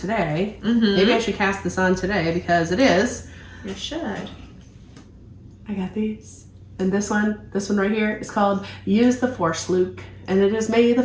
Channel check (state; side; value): identical; both; correlation 1.00